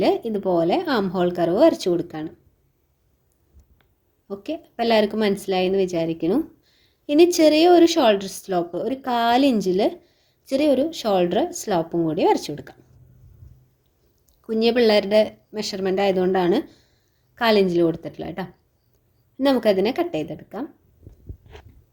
ഇതുപോലെ ആം ഹോൾ കർവ് വരച്ചു കൊടുക്കുകയാണ്. ഓക്കെ, അപ്പോൾ എല്ലാവർക്കും മനസ്സിലായി എന്ന് വിചാരിക്കുന്നു. ഇനി ചെറിയ ഒരു ഷോൾഡർ സ്ലോപ്പ്, ഒരു 4 ഇഞ്ചിൽ ചെറിയൊരു ഷോൾഡർ സ്ലോപ്പും കൂടി വരച്ചു കൊടുക്കാം. കുഞ്ഞു പിള്ളേരുടെ മെഷർമെൻ്റ് ആയതുകൊണ്ടാണ് 4 ഇഞ്ചിൽ കൊടുത്തിട്ടുള്ളത് കേട്ടോ. നമുക്കതിനെ കട്ട് ചെയ്തെടുക്കാം.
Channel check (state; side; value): identical; both; correlation 1.00